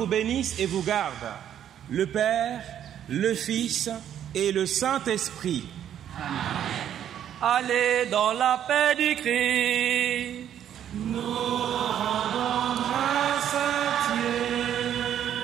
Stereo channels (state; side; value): quieter; left; 10.1 dB